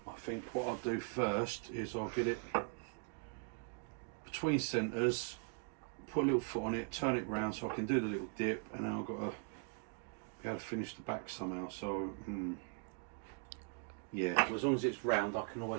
think what I'll do first is I'll get it between centres, put a little foot on it, turn it round so I can do the little dip, and then I've got to be able to finish the back somehow. So yeah, well, as long as it's round, I can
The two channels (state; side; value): quieter; left; 36.4 dB